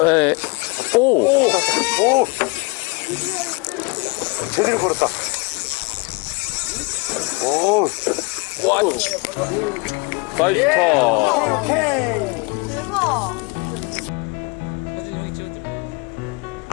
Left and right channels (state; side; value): quieter; right; 28.0 dB